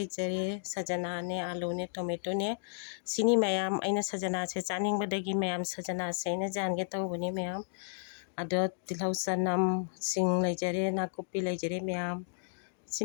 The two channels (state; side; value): silent; right; digital silence